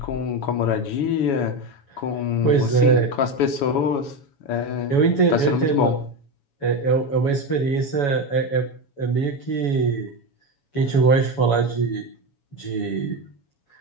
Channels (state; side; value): late; right; 7.1 ms